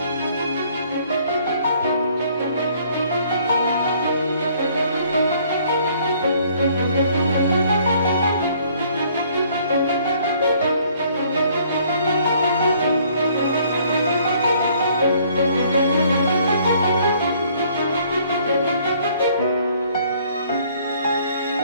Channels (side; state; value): both; inverted; correlation -0.61